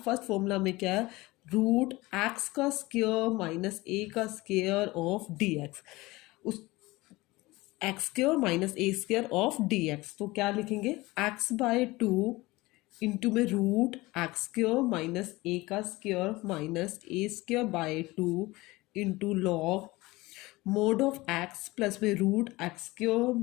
में क्या है, रूट एक्स का स्क्वायर माइनस ए का स्क्वायर ऑफ डी एक्स, उस x square minus a square of d x. तो क्या लिखेंगे, एक्स बाय टू इंटू में रूट एक्स स्क्वायर माइनस ए का square minus a square by two into log mode of x plus में root x square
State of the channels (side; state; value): right; quieter; 20.8 dB